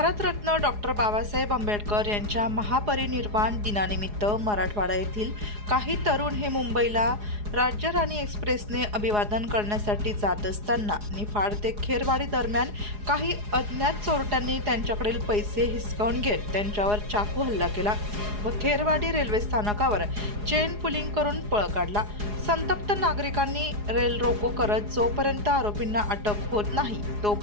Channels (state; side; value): late; left; 4.8 ms